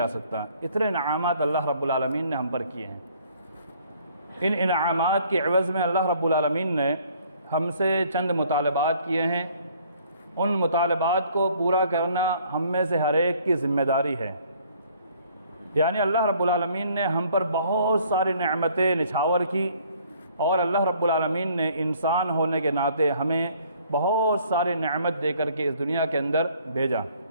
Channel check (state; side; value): inverted; both; correlation -0.60